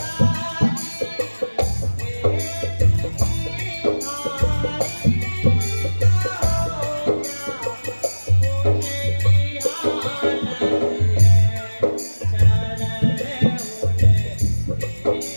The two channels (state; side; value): inverted; both; correlation -1.00